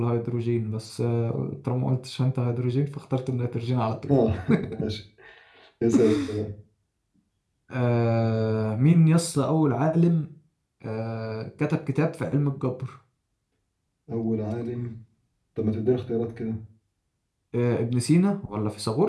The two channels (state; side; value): identical; both; correlation 1.00